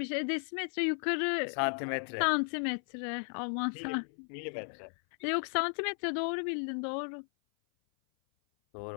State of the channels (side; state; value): right; silent; 55 dB below the other